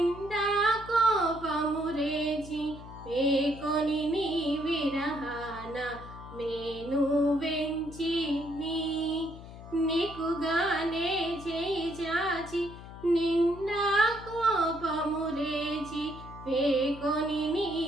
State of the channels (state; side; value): noise; left; hum, 15 dB below the sound